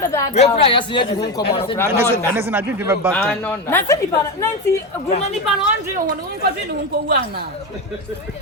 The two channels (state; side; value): normal; both; correlation 0.16